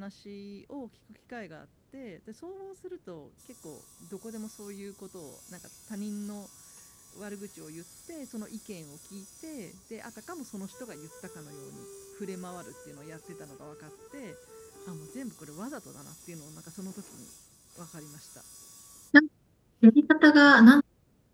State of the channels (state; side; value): identical; both; correlation 1.00